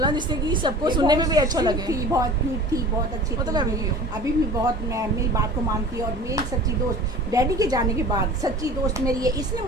जिससे कि सबको सुनने में भी अच्छा लगे। थी, बहुत क्यूट थी, बहुत अच्छी वो तो थी, मैं भी हूँ। अभी भी बहुत मेरी बात को मानती है। और मेरी सच्ची दोस्त, डैडी के जाने के बाद सच्ची दोस्त मेरी है, इसने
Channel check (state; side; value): normal; both; correlation 0.41